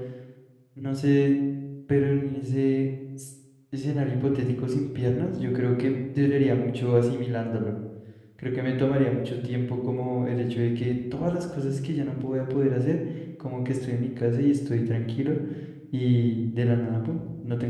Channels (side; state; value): both; identical; correlation 1.00